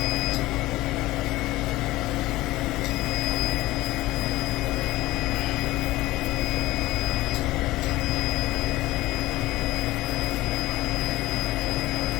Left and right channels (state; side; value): quieter; right; 17.9 dB